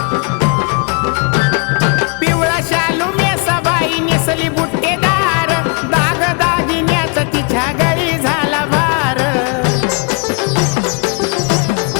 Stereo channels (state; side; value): quieter; right; 35.9 dB